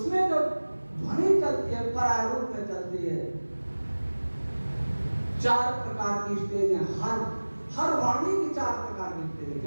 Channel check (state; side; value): inverted; both; correlation -1.00